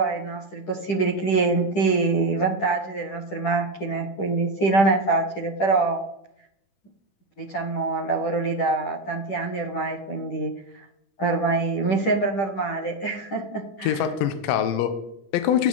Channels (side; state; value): right; late; 10 ms